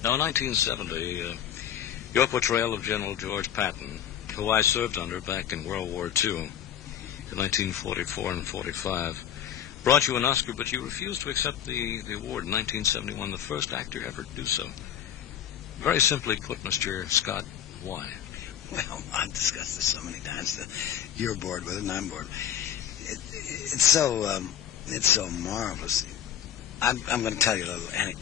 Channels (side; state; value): right; quieter; 9.8 dB